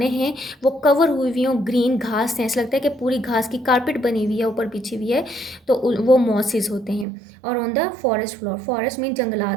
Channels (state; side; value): drops out; left; at 7.1 s